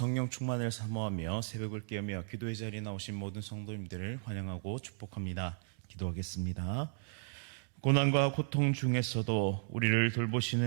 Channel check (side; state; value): left; silent; digital silence